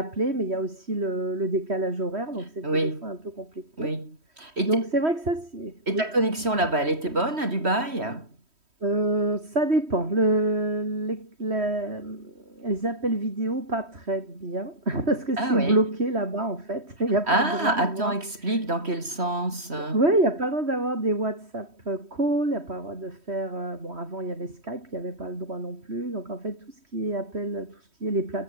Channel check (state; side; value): late; left; 3.1 ms